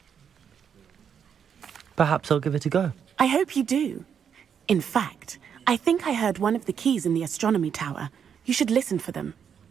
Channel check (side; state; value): left; quieter; 7.7 dB